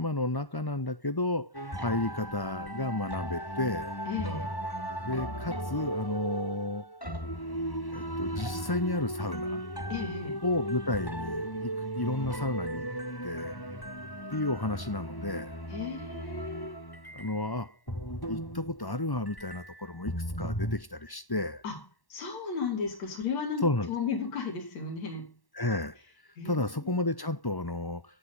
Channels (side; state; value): right; late; 1.1 ms